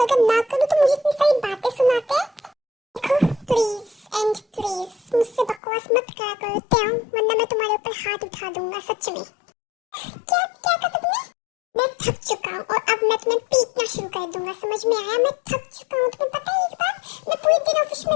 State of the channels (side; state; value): right; drops out; at 5.6 s